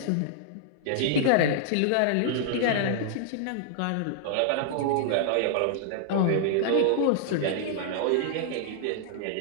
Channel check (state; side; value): different; both; correlation -0.01